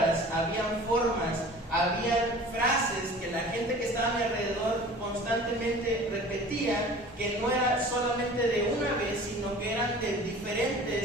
habían formas, habían frases que la gente que estaba a mi alrededor constantemente repetía, que no era solamente de una vez, sino que eran de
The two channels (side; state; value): both; normal; correlation 0.43